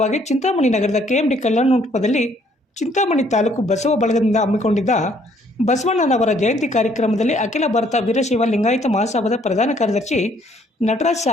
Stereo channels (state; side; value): normal; both; correlation 0.64